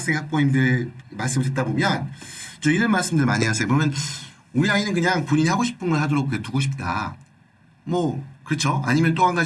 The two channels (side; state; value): both; identical; correlation 1.00